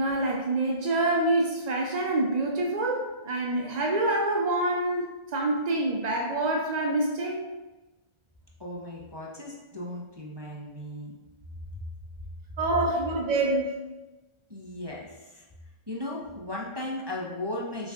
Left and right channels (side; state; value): left; late; 1.9 ms